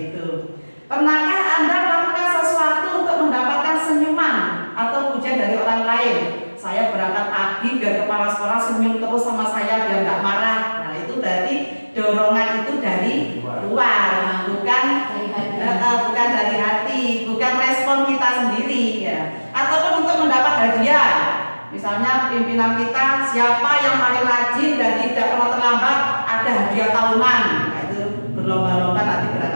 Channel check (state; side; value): inverted; both; correlation -1.00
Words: itu. Pernahkah Anda melakukan sesuatu untuk mendapatkan senyuman atau pujian dari orang lain? Saya berangkat pagi biar kepala sekolah senyum terus sama saya, biar nggak marah. Nah itu berarti dorongan itu dari luar, bukan dari hati, bukan respon kita sendiri ya. Ataupun untuk mendapat hadiah. Misalnya pimpinan kita, siapa yang paling rajin dan tidak pernah terlambat, ada hadiah tahunan. Nah, itu berlomba-lomba nanti